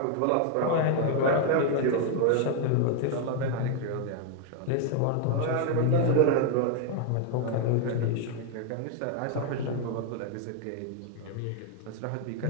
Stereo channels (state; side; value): different; both; correlation 0.00